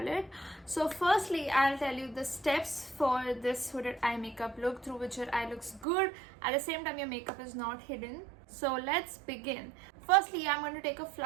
So firstly, I'll tell you the steps for this hooded eye makeup look through which your eye looks good. At the same time, your makeup is not hidden. So let's begin. Firstly, I'm going to take a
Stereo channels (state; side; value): drops out; left; at 5.9 s